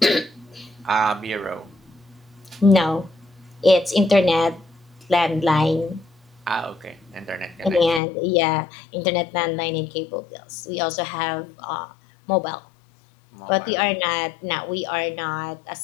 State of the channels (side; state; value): right; drops out; at 8.0 s